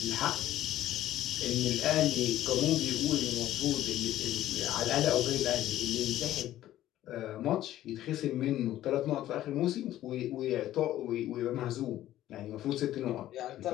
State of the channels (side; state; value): right; quieter; 13.5 dB